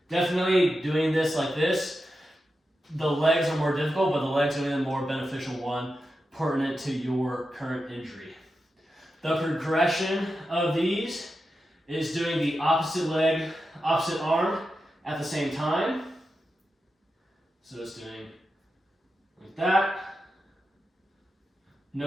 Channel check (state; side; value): normal; both; correlation 0.90